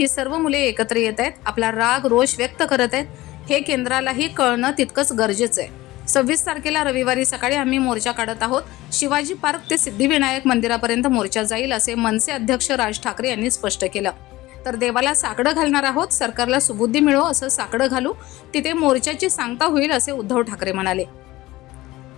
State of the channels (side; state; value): right; quieter; 18.3 dB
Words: सर्व मुले एकत्र येत आहेत, आपला राग रोष व्यक्त करत आहेत. हे केंद्रालाही कळणं तितकंच गरजेचं आहे. 26 तारखेला रविवारी सकाळी आम्ही मोर्चा काढत आहोत. शिवाजी पार्क ते सिद्धिविनायक मंदिरापर्यंत मोर्चा जाईल, असे मनसे अध्यक्ष राज ठाकरे यांनी स्पष्ट केलं. तर देवाला साकडं घालणार आहोत, सरकारला सुबुद्धी मिळो असं साकडं घालू, तिथे मोर्चाची सांगता होईल असे उद्धव ठाकरे म्हणाले.